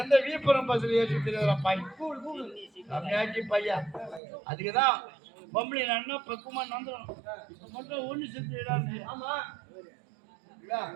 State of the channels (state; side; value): drops out; left; at 4.2 s